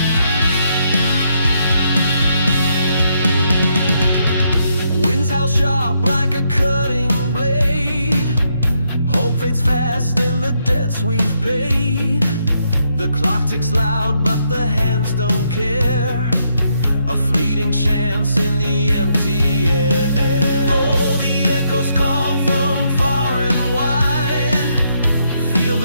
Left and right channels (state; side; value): inverted; both; correlation -0.76